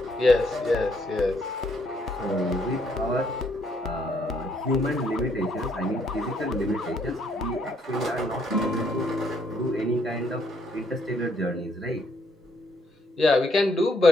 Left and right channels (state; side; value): normal; both; correlation 0.70